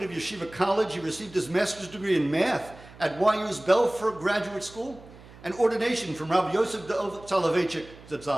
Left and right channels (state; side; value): noise; right; hum, 20 dB below the sound